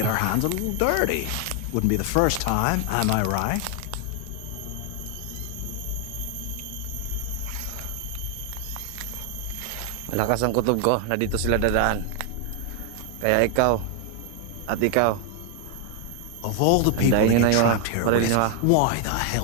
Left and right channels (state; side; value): different; both; correlation 0.00